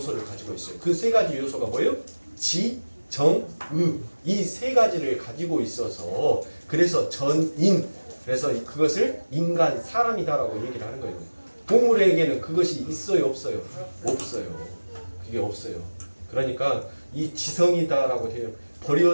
가지고 있어요. 그 세 가지 요소가 뭐예요? 지, 정, 의. 이 세 가지를 가지고 있어서 그래서 전인. 그래서 그것을 인간, 사람이다라고 얘기를 하는 거예요. 동물에게는 그것이 있어요, 없어요? 없어요. 그게 없어요. 그러니까 이 지성이다라고 해요.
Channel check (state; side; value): inverted; both; correlation -1.00